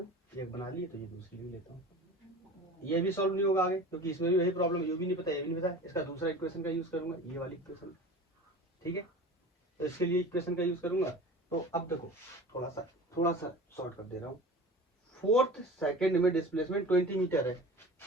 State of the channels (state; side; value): normal; both; correlation 0.38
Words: एक बना लिए, तो ये दूसरी भी लेता हूँ। ये भी सॉल्व नहीं होगा आगे, क्योंकि इसमें भी वही प्रॉब्लम, ये भी नहीं पता, ये भी नहीं पता। इसका दूसरा इक्वेशन का यूज करूंगा, ये वाली इक्वेशन, ठीक है। तो इसके लिए इक्वेशन का यूज करूंगा। तो अब देखो थोड़ा सा शॉर्ट कर दे रहा हूँ। 4th सेकंड में डिस्प्लेसमेंट 20 मीटर है,